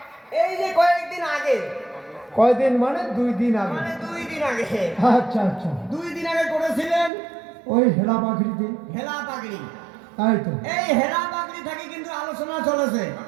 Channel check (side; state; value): left; drops out; at 7.1 s